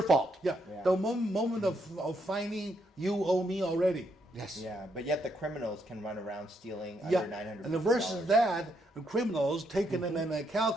fault. the moment of finding you owe me already. Yes. Yeah, but yet the criminals can run around stealing Yeah, under $950. and versus that, the criminals taking in a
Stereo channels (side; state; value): both; normal; correlation 0.76